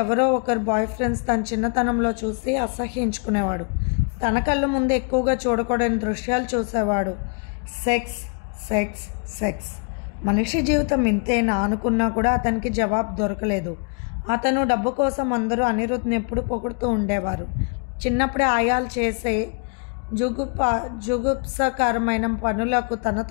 ఎవరో ఒకరు బాయ్ ఫ్రెండ్స్ తన చిన్నతనంలో చూసి అసహ్యించుకునేవాడు. తన కళ్ళు ముందు ఎక్కువగా చూడకూడని దృశ్యాలు చూసేవాడు. Sex sex sex. మనిషి జీవితం ఇంతేనా అనుకున్నా కూడా అతనికి జవాబు దొరకలేదు. అతను డబ్బు కోసం అందరూ అనిరుద్ని ఎప్పుడు పొగుడుతూ ఉండేవారు. చిన్నప్పుడే ఆయాలు చేసే జుగుప్సకరమైన పనులకు,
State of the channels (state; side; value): quieter; right; 36.6 dB